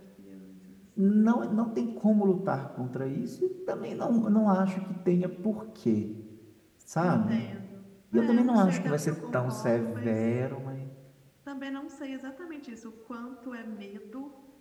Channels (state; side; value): identical; both; correlation 1.00